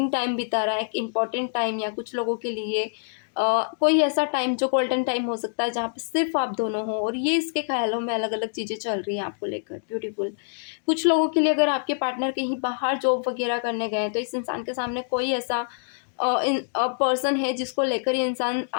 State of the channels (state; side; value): silent; right; digital silence